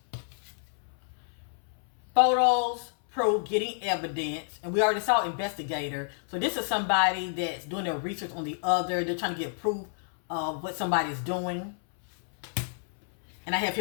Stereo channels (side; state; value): right; silent; 58 dB below the other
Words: Photos prove getting evidence. And we already saw investigator. So this is somebody that's doing their research on the other. They're trying to get proof of what somebody's doing. And I have